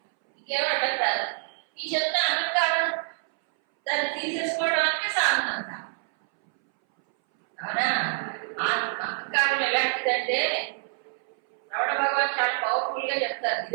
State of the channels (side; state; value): left; silent; 61 dB below the other